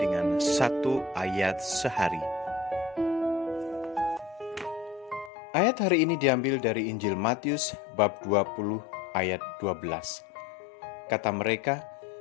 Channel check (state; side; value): drops out; right; at 5.3 s